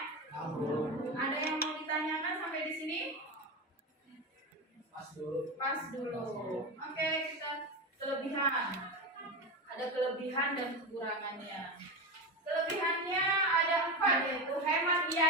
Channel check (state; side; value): normal; both; correlation 0.18